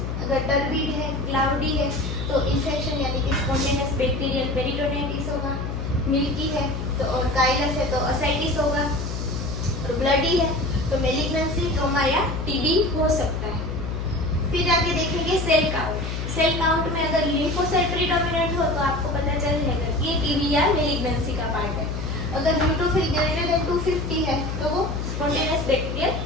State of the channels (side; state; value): left; noise; hum, 4 dB below the sound